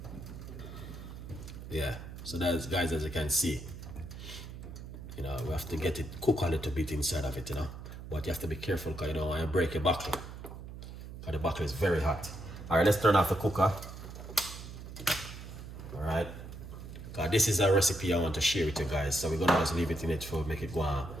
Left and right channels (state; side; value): noise; right; hum, 11 dB below the sound